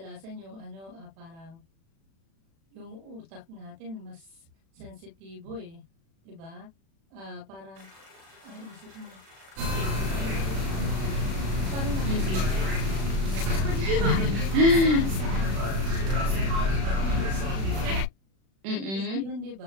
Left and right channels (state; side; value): late; left; 36 ms